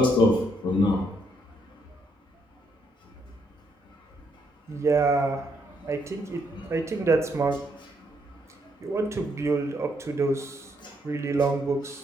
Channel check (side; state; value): both; normal; correlation 0.74